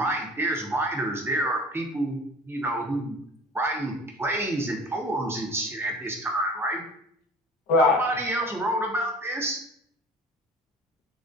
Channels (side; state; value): both; normal; correlation 0.41